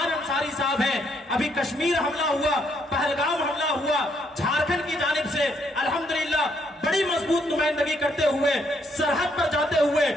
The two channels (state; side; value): normal; both; correlation 0.72